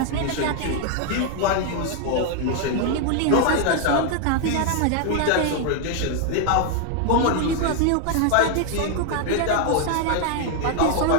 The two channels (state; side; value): different; both; correlation 0.00